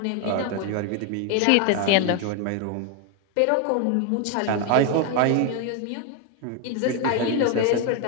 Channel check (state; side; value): different; both; correlation 0.01